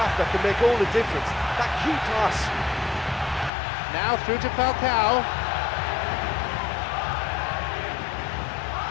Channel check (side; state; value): right; drops out; at 3.5 s